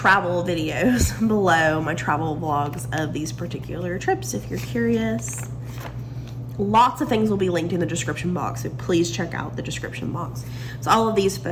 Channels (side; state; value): both; identical; correlation 1.00